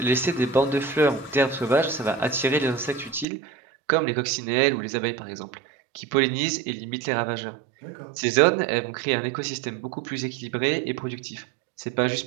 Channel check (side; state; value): left; drops out; at 3.2 s